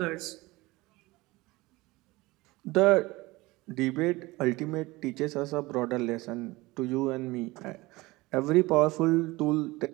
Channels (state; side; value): quieter; left; 21.2 dB